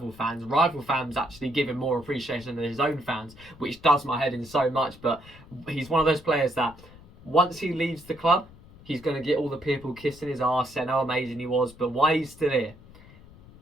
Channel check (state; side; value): noise; left; rumble, 21 dB below the sound